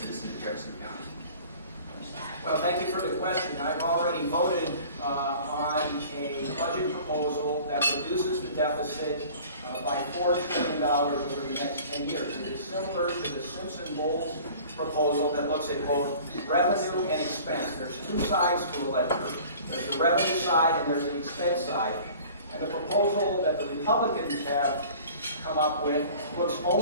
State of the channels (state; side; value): inverted; both; correlation -0.46